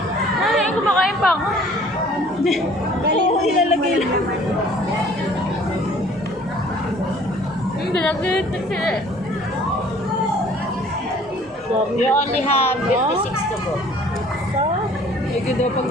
Ay, kumakain pa ako. oo, ilalagay lang. Hindi, nag-iitin sila eh. You only have 56 to go. Medyo daw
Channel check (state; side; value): normal; both; correlation 0.54